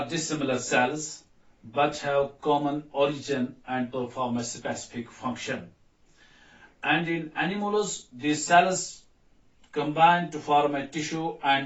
dissimilar cells but have common origin and perform a specific function. And in animals, these cells combine to form a tissue,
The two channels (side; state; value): both; identical; correlation 1.00